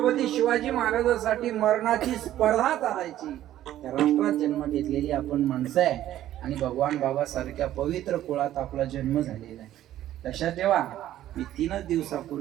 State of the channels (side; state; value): left; quieter; 12.9 dB